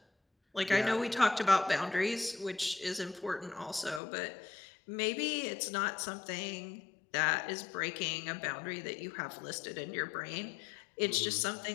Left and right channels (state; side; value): drops out; right; at 4.0 s